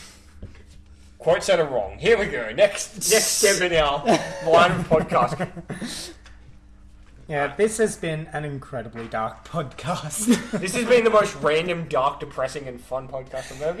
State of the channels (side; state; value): both; identical; correlation 1.00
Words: Quite said it wrong. Here we go. Next step in our line of podcast. Yeah, this has been an incredibly dark podcast. This has been the most random, dark, depressing, and fun podcast I've ever